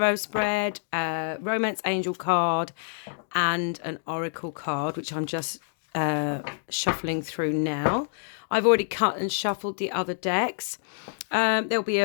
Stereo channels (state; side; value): silent; right; digital silence